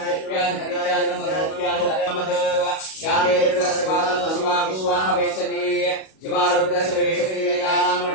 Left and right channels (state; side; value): late; right; 37 ms